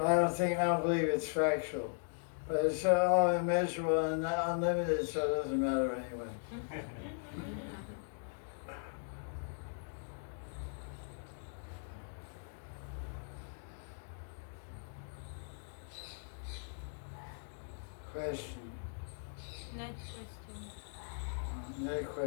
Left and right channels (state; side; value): silent; right; digital silence